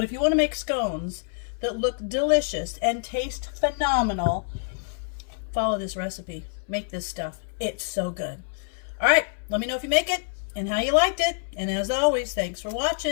if you want to make scones that look delicious and taste phenomenal, follow this recipe. Make this stuff. It's so good. All right, let me know if you make it and how you liked it. And as always, thanks for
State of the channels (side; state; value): right; silent; 59 dB below the other